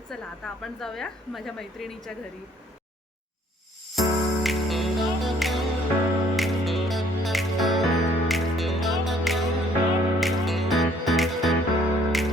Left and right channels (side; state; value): both; normal; correlation 0.61